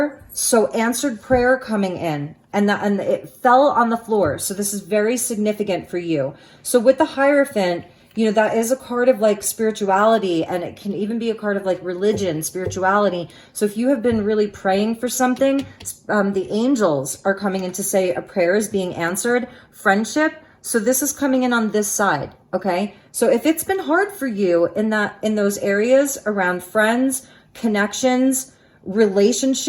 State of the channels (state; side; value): identical; both; correlation 1.00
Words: so answered prayer coming in, and it fell on the floor. So this is very significant for you. So with the Hierophant, you know, that is a card of like spirituality, and it can even be a card of like religion, spirituality. So if you have been really praying for something, the angels are coming in to say a prayer is being answered. Friendship. So this is coming in on this side, okay? So if it's been hard for you in those areas around friends, connections,